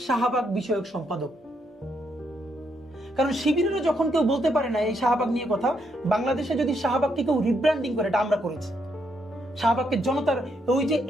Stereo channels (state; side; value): normal; both; correlation 0.77